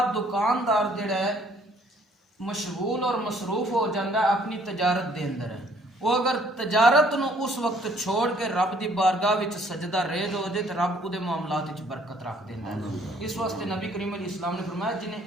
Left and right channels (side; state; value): both; normal; correlation 0.61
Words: دکاندار جڑا ہے مشغول اور مصروف ہو جاندہ اپنی تجارت دے اندر ہے، وہ اگر تجارت نو اس وقت چھوڑ کے رب دی بارگاہ وچ سجدہ ریز ہو جائے تو رب اودے معاملات وچ برکت رکھ دیندا ہے۔ اس واسطے نبی کریم علیہ السلام نے فرمایا